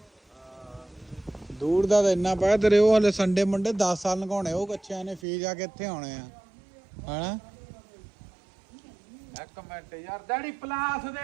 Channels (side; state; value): left; drops out; at 5.2 s